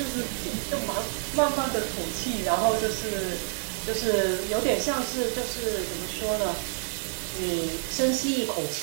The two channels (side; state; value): left; silent; 59 dB below the other